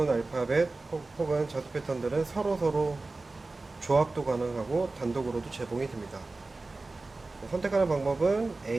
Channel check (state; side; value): quieter; left; 3.4 dB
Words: 알파벳 혹은 자수 패턴들은 서로 조합도 가능하고 단독으로도 제공이 됩니다. 선택하는 방법은